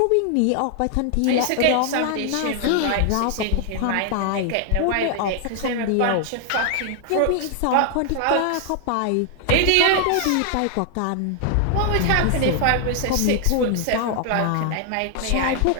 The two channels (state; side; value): different; both; correlation 0.00